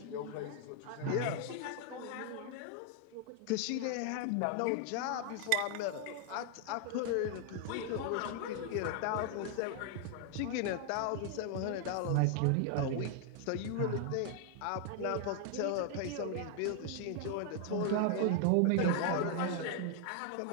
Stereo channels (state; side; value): different; both; correlation 0.00